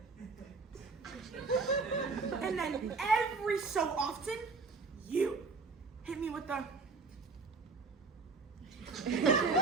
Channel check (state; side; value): quieter; left; 4.2 dB